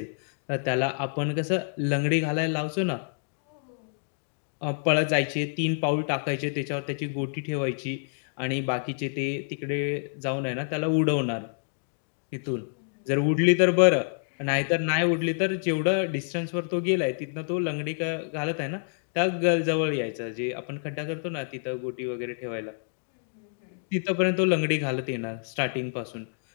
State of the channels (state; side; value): silent; right; digital silence